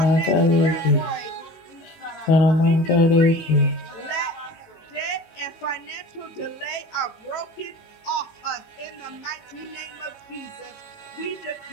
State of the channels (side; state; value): right; late; 18 ms